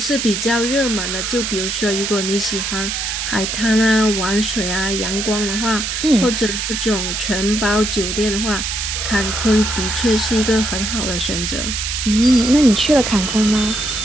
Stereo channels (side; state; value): right; noise; hiss, 3 dB below the sound